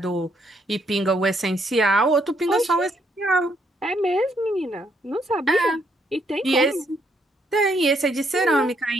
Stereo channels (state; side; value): normal; both; correlation 0.73